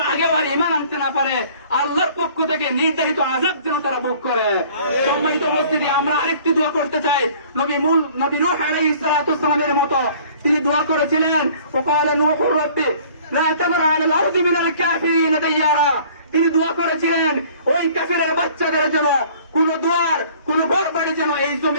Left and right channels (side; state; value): both; inverted; correlation -0.52